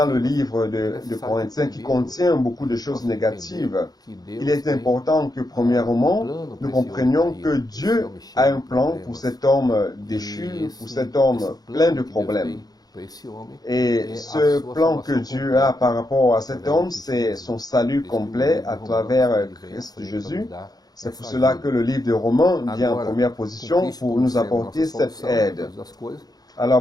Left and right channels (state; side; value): late; right; 0.19 ms